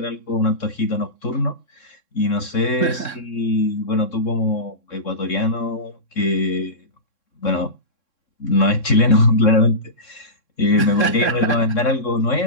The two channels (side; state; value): right; late; 3.7 ms